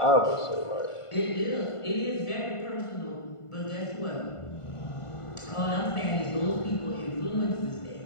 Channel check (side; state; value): right; late; 1.5 ms